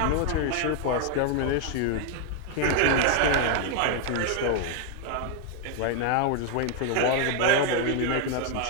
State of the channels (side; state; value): both; different; correlation 0.00